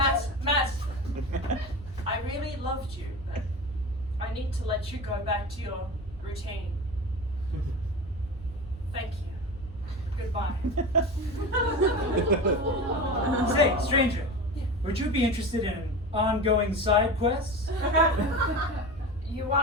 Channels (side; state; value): both; normal; correlation 0.29